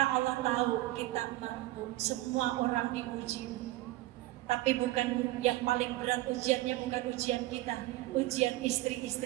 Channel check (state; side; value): quieter; left; 17.4 dB